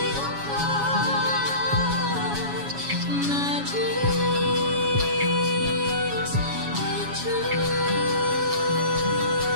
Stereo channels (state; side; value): late; left; 7.2 ms